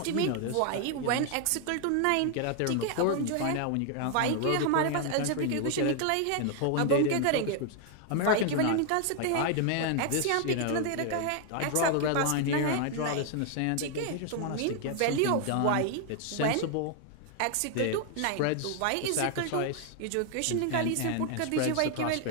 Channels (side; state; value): both; different; correlation 0.00